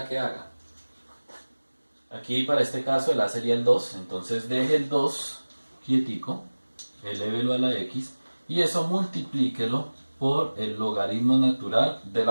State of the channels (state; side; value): inverted; both; correlation -1.00